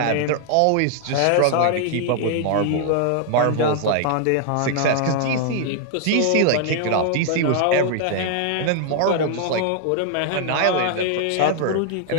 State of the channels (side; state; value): both; different; correlation 0.00